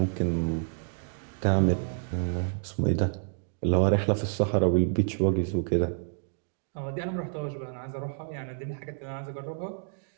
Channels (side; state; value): left; silent; digital silence